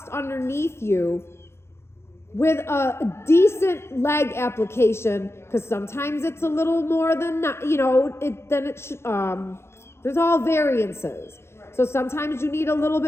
underneath you with a decent leg application, because sometimes it's a little more than there's all variances. So sometimes you need a little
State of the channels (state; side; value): late; right; 0.12 ms